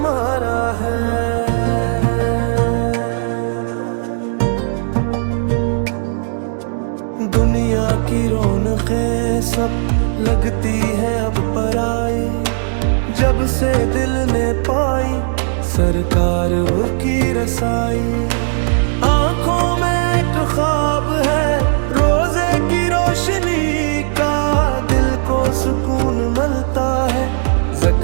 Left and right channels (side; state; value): left; silent; digital silence